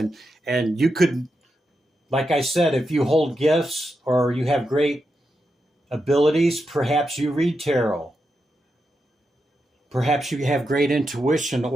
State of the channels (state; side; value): normal; both; correlation 0.86